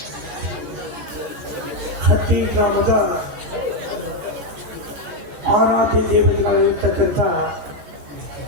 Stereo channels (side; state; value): left; late; 13 ms